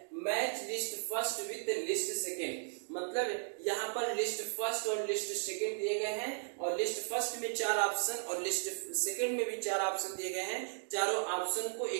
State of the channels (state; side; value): silent; left; digital silence